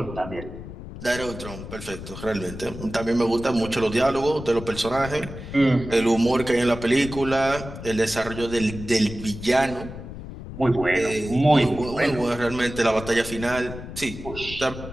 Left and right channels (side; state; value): left; noise; rumble, 11 dB below the sound